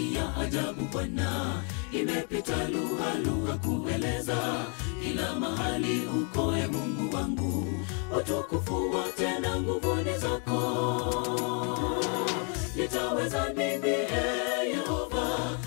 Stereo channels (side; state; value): right; quieter; 39.2 dB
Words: ya ajabu Bwana, imepita lugha kueleza. Kila mahali uko Mungu wangu, utukufu wote na nguvu ni zako. Nitaweza nini Yehova